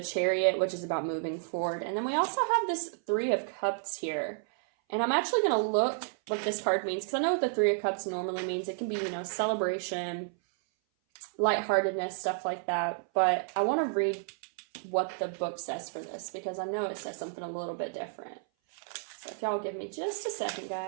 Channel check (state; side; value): silent; left; 57 dB below the other